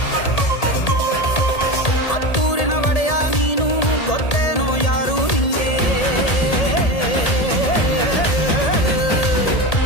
ಹತ್ತೂರಿನ ಒಡೆಯ ನೀನು, ಗೊತ್ತೇನೋ ಯಾರು ನಿಂಗೆ.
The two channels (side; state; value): right; late; 1.8 ms